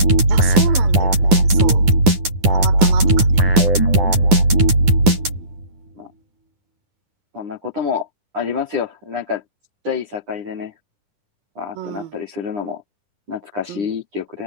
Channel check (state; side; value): late; left; 10 ms